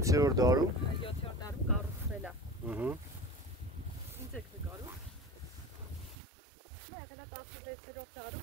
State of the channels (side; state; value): left; drops out; at 6.2 s